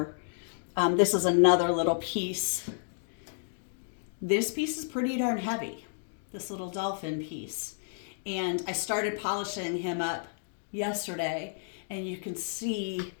This is another little piece. This piece is pretty darn heavy. this little dolphin piece. And I started polishing him up yesterday, and you can see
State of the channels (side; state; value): right; silent; digital silence